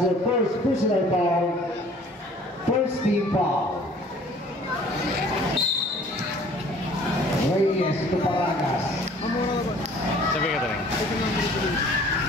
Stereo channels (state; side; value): normal; both; correlation 0.53